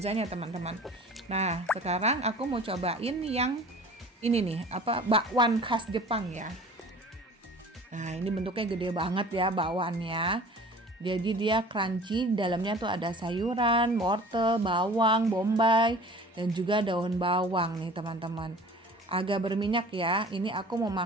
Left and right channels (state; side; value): normal; both; correlation 0.44